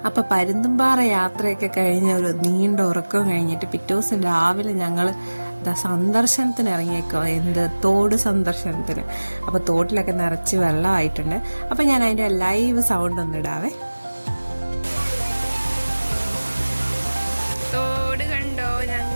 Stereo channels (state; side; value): inverted; both; correlation -1.00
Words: അപ്പോൾ പരുന്തുംപാറ യാത്രയൊക്കെ കഴിഞ്ഞ ഒരു നീണ്ട ഉറക്കം കഴിഞ്ഞിട്ട് പിറ്റേ ദിവസം രാവിലെ ഞങ്ങൾ സന്ദർശനത്തിന് ഇറങ്ങിയേക്കോ, തോട് സന്ദർശനത്തിന്. അപ്പോൾ തോട്ടിലൊക്കെ നിറച്ച് വെള്ളമായിട്ടുണ്ട്. അപ്പോൾ ഞാൻ അതിൻ്റെ ലൈവ് സൗണ്ട് ഒന്ന് ഇടാവേ. തോട് കണ്ടോ,